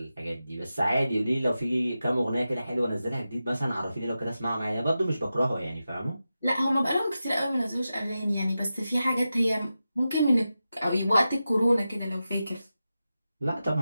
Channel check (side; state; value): both; inverted; correlation -0.92